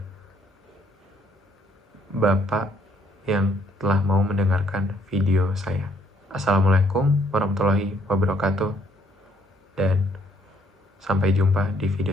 Bapak yang telah mau mendengarkan video saya. Assalamualaikum warahmatullahi wabarakatuh, dan sampai jumpa di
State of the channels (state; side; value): normal; both; correlation 0.67